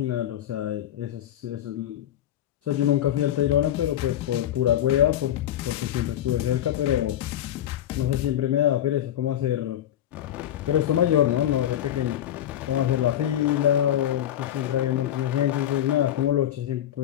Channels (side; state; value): right; quieter; 11.5 dB